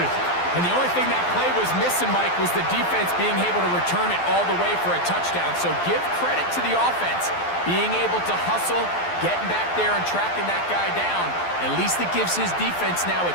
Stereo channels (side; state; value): right; late; 12 ms